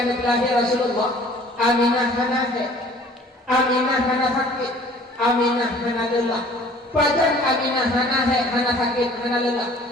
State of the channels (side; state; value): both; normal; correlation 0.52